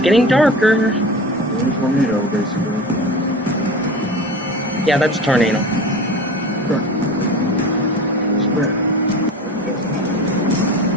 getting darker. Tornado, basically. Yeah, that's a tornado.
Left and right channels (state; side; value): normal; both; correlation 0.33